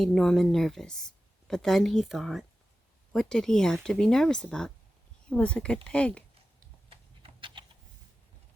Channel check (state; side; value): normal; both; correlation 0.94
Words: Norman nervous, but then he thought, what did he have to be nervous about? He was a good pig.